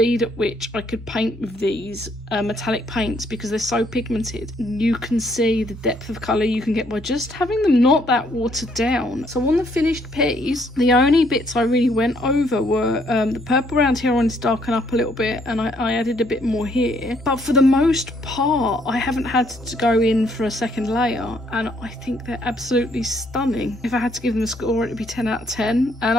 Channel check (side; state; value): both; normal; correlation 0.68